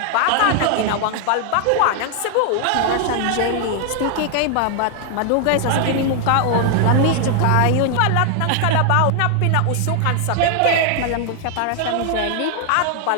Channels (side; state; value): both; different; correlation 0.00